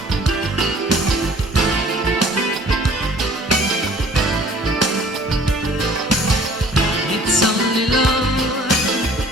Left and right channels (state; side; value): normal; both; correlation 0.52